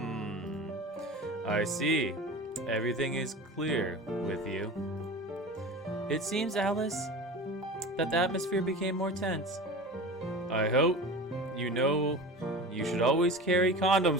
I see. Everything is clear with you. It seems, Alice, that the atmosphere became more tense. I hope you know you should always carry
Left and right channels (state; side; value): normal; both; correlation 0.34